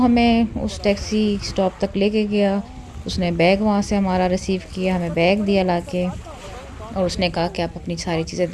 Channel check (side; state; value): both; identical; correlation 1.00